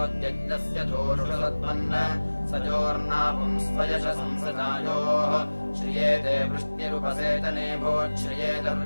धूषुषसत्वन्न सजोर्नापुं स्वयश संसजायोः श्रियेते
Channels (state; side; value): inverted; both; correlation -1.00